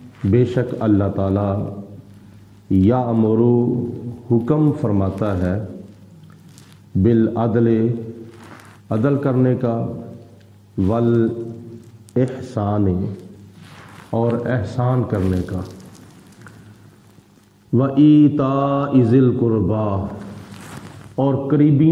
بے شک اللہ تعالی، یامر، حکم فرماتا ہے، بالعدل، عدل کرنے کا، والاحسان، اور احسان کرنے کا، وایتاء ذی القربی، اور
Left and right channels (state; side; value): identical; both; correlation 1.00